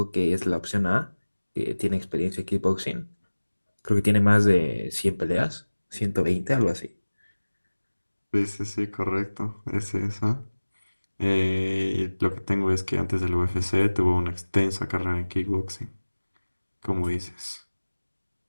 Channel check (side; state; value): both; inverted; correlation -1.00